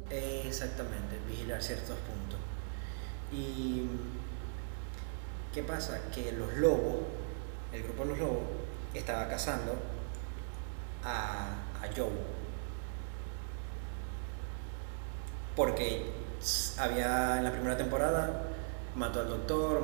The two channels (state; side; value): silent; left; digital silence